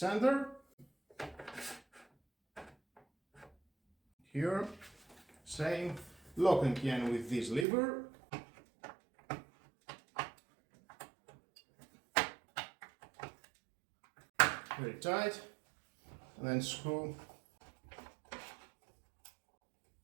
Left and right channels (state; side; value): drops out; left; at 7.7 s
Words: Here, same, lock again with this lever. Very tight, and then screw.